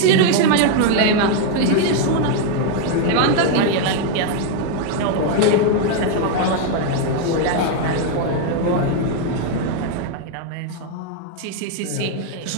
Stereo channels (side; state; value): both; different; correlation 0.01